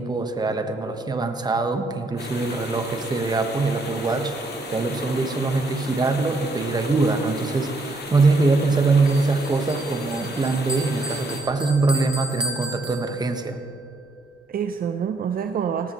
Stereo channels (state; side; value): quieter; left; 3.0 dB